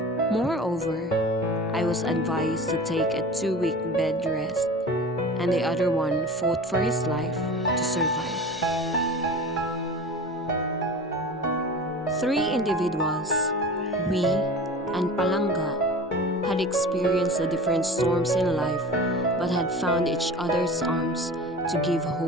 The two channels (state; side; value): normal; both; correlation 0.36